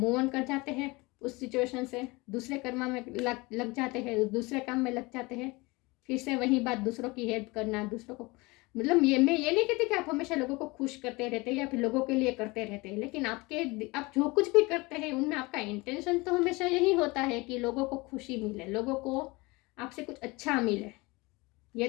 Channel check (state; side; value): quieter; right; 24.0 dB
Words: ऑन कर जाते हैं उस सिचुएशन से, दूसरे कर्मा में लग जाते हैं, दूसरे काम में लग जाते हैं। फिर से वही बात, दूसरों की हेल्प करना, दूसरों को, मतलब मैं ये नहीं कहती कि आप हमेशा लोगों को खुश करते रहते हैं या फिर लोगों के लिए करते रहते हैं, लेकिन आप जो कुछ भी करते हैं उनमें आपका इंटेंशन तो हमेशा यही होता है कि लोगों को खुशी मिले, लोगों को आपसे कुछ अच्छा मिले, ये